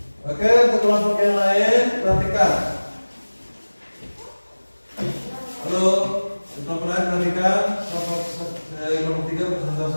Oke, untuk kelompok yang lain perhatikan. Halo, untuk kelompok lain perhatikan. Kelompok 3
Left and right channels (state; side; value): inverted; both; correlation -1.00